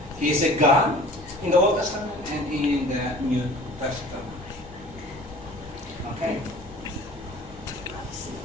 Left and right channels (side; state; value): both; normal; correlation 0.45